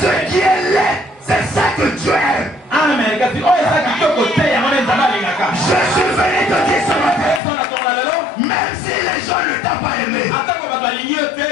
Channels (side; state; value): right; drops out; at 7.4 s